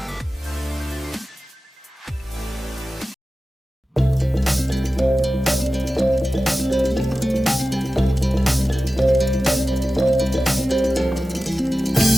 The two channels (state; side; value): normal; both; correlation 0.94